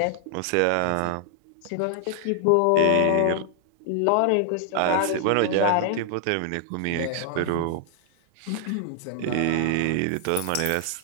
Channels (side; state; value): both; different; correlation 0.00